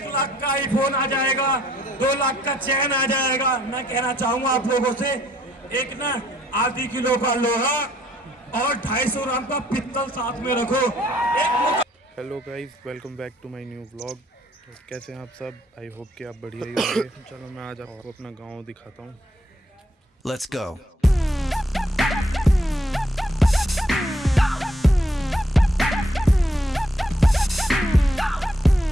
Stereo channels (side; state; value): both; normal; correlation 0.68